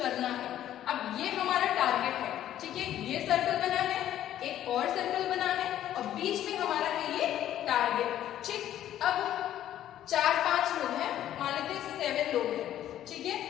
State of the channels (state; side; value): quieter; right; 11.9 dB